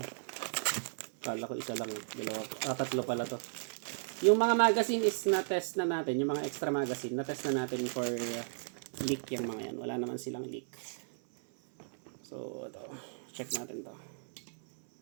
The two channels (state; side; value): silent; left; 54 dB below the other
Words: Kala ko isa lang. Tatlo pala to. Yung mga magazine is na-test na natin. Yung mga extra magazine, na-test na natin for leak yung mga yan. Wala naman silang leak. So, ito. Check natin to.